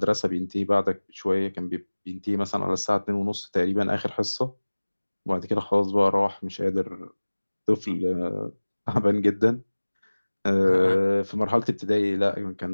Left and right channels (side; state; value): both; inverted; correlation -1.00